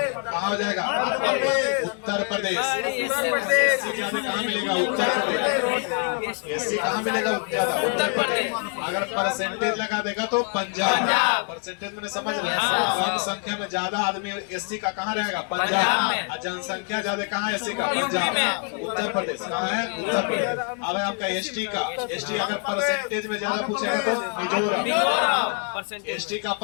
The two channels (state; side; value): quieter; right; 38.5 dB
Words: कहाँ हो जाएगा? उत्तर प्रदेश। एससी ज्यादा कहाँ मिलेगा? उत्तर प्रदेश। एससी कहाँ मिलेगा ज्यादा? उत्तर प्रदेश। अगर परसेंटेज लगा देगा तो पंजाब। परसेंटेज मैंने समझ रहे हैं, कम संख्या में ज्यादा आदमी एससी का कहाँ रहेगा? पंजाब। और जनसंख्या ज्यादा कहाँ एससी का? पंजाब। उत्तर प्रदेश कहाँ है? उत्तर प्रदेश। अब है आपका एसटी का। एसटी अगर परसेंटेज में ज्यादा पूछेगा तो मिजोरम। एसटी का